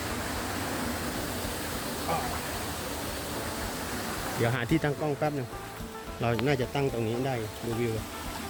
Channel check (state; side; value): identical; both; correlation 1.00